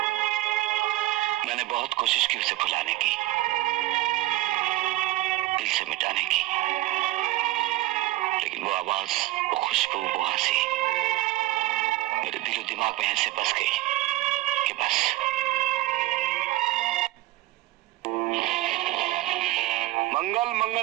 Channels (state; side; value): quieter; left; 17.3 dB